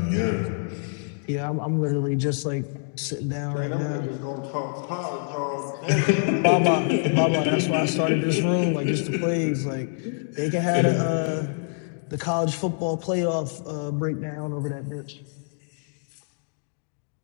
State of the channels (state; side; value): silent; right; 61 dB below the other